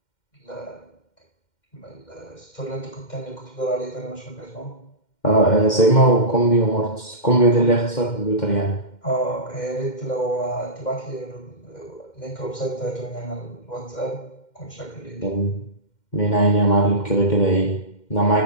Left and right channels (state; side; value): late; right; 2.1 ms